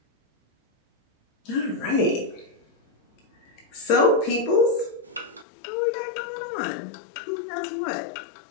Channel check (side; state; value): right; drops out; at 5.5 s